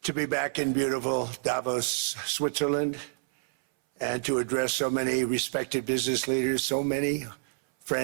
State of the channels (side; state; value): left; silent; 59 dB below the other